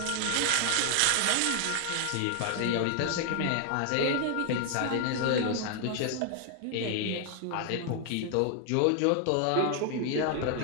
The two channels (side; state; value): both; different; correlation 0.00